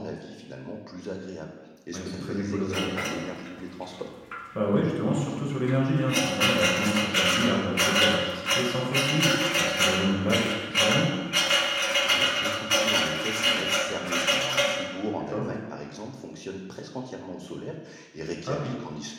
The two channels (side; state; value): both; identical; correlation 1.00